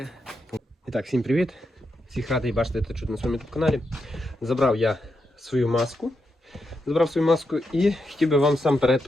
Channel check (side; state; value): both; normal; correlation 0.85